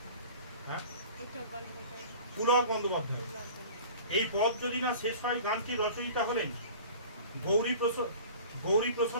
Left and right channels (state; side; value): inverted; both; correlation -0.42